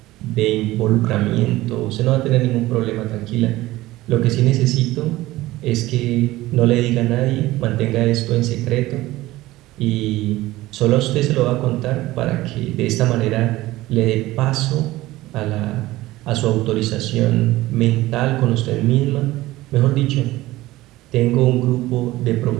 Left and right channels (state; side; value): quieter; left; 17.6 dB